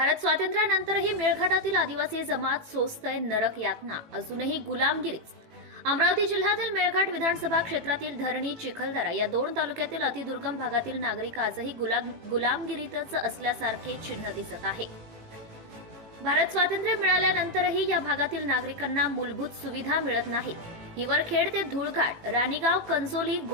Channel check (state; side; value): late; left; 18 ms